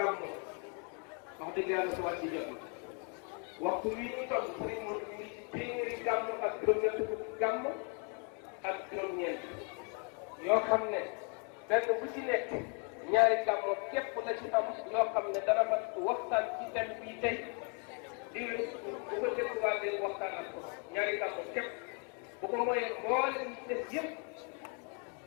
wax dëgg yàlla su wàcc jot waxtu wi ñu toll sëriñ Modou mi ngi ci téeméeri gàmmo ak juróom-ñett fukk gàmmo ak juróom-ñeent yoo xam ne benn bu ci nekk ñaari gàmmo képp la ci am yoo xam ne dana mat waxtaan ci thème bii tey di bu ko dégluwaatee waxtaan ak ko ñaari gàmmo képp bu ko mooyee mboolem ñi des yëpp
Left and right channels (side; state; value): right; quieter; 38.5 dB